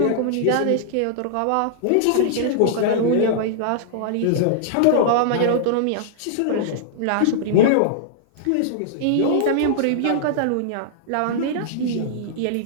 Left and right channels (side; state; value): both; different; correlation -0.02